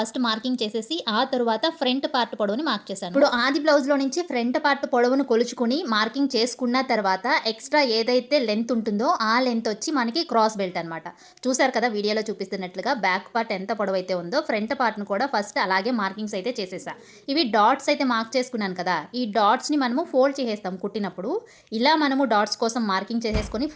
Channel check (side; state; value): both; identical; correlation 1.00